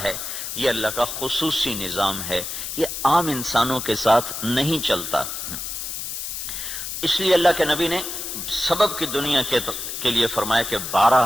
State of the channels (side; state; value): left; noise; hiss, 6 dB below the sound